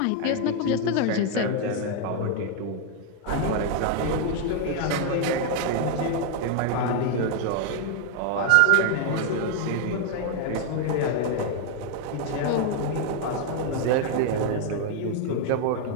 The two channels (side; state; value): both; different; correlation 0.00